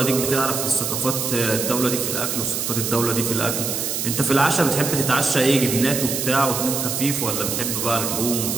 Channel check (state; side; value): noise; right; hiss, 2 dB below the sound